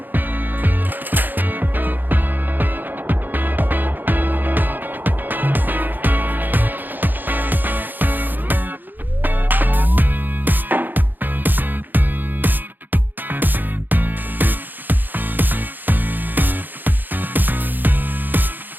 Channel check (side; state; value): left; late; 0.089 ms